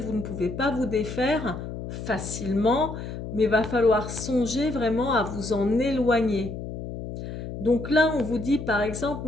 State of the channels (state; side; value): noise; left; hum, 8 dB below the sound